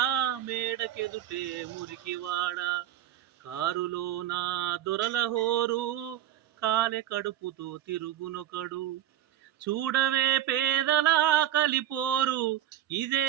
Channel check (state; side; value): quieter; left; 12.2 dB